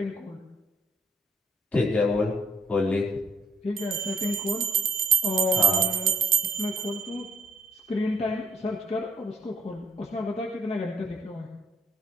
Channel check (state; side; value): normal; both; correlation 0.68